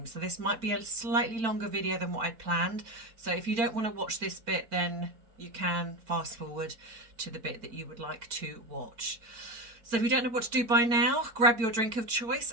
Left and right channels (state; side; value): late; left; 4.4 ms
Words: So this might be a slightly longer video than what I'd planned. So if you don't want to watch this bit, then you can fast forward to the bit that you would like to watch. So if you don't know what to do by now, grab your drink of choice